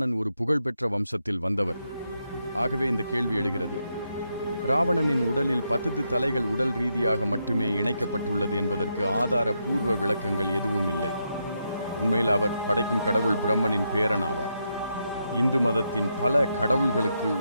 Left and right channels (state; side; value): inverted; both; correlation -0.82